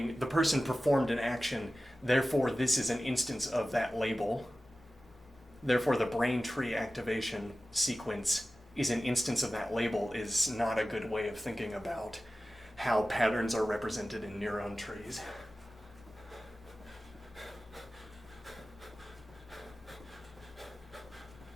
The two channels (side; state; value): both; normal; correlation 0.95